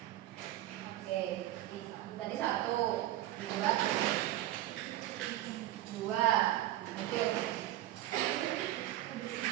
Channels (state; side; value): quieter; left; 14.8 dB